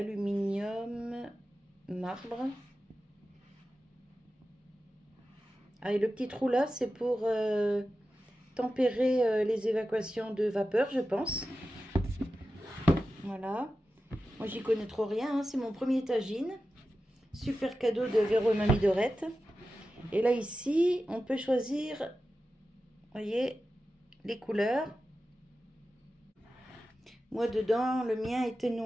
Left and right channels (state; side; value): normal; both; correlation 0.93